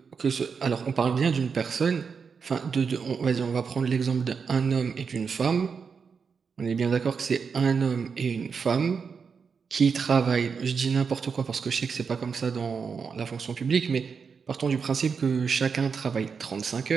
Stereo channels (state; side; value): quieter; left; 5.8 dB